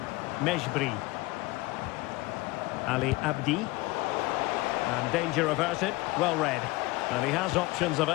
Mejbri. Ali Abdi. And danger averted. Well read. And he has options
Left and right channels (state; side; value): quieter; right; 21.5 dB